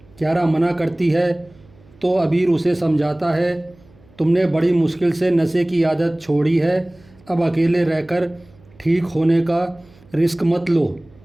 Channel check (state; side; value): noise; right; hum, 28 dB below the sound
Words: कियारा मना करती है तो अबीर उसे समझाता है, तुमने बड़ी मुश्किल से नशे की आदत छोड़ी है, अब अकेले रहकर ठीक होने का रिस्क मत लो,